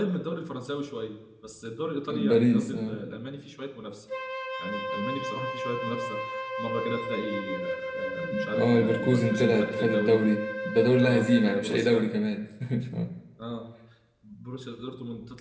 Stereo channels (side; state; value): both; identical; correlation 1.00